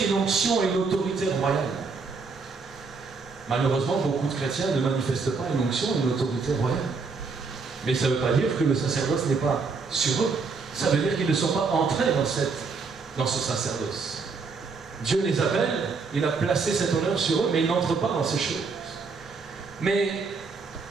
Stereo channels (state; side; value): quieter; left; 4.6 dB